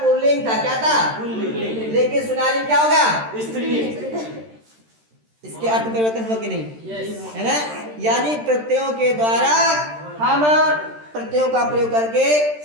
था। क्या था? लेकिन सुनारी क्या होगा? इसके अर्थ में परिवर्तन हुआ कि नहीं? है ना। यानी प्रत्ययों के द्वारा हम प्रत्ययों का प्रयोग करके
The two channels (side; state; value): left; late; 13 ms